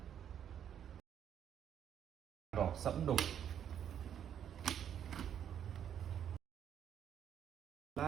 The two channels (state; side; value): quieter; left; 9.3 dB